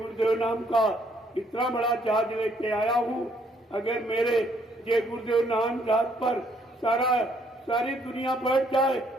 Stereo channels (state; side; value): normal; both; correlation 0.68